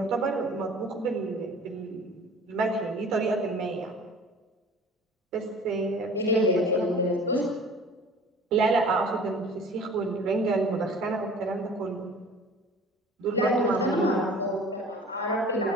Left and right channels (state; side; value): normal; both; correlation 0.45